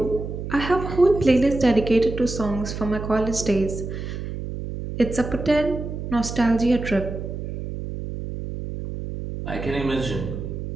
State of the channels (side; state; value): right; noise; hum, 7 dB below the sound